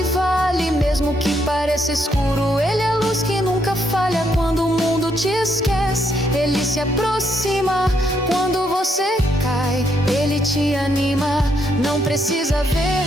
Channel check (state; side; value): normal; both; correlation 0.75